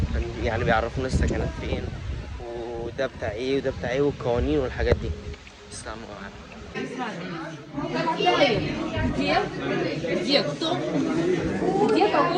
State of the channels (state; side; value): identical; both; correlation 1.00